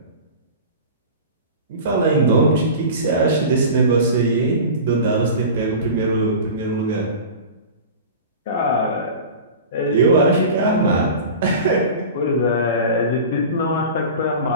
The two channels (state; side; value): inverted; both; correlation -0.34